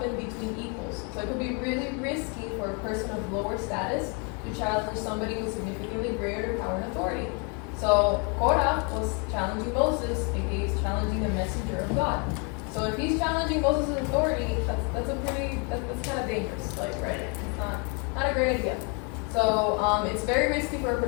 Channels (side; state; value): right; quieter; 35.2 dB